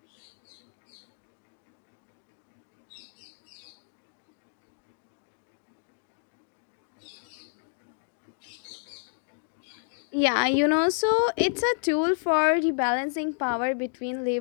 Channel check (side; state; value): right; silent; digital silence